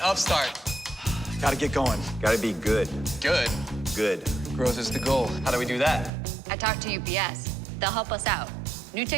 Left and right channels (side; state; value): left; drops out; at 6.1 s